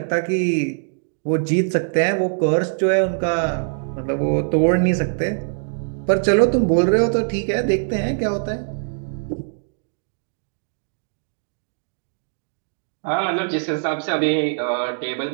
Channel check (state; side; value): silent; left; digital silence